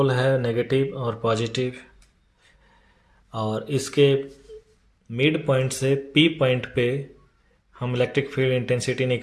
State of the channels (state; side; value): identical; both; correlation 1.00